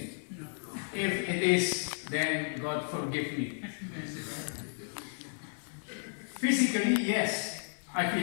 If it is, then God forgive me. Physically, yes, I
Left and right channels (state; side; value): silent; right; digital silence